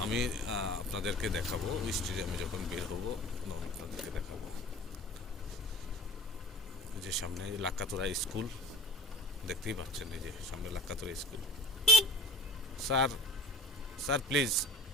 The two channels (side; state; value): both; normal; correlation 0.40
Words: আমি আপনাদেরকে দেখাবো স্টেডিয়ামে যখন বের হবো, আপনাদেরকে দেখাবো যে সামনে লাক্কাতুরা স্কুল, দেখতেই পাচ্ছেন এই যে সামনে Lakkatura school. Sir sir please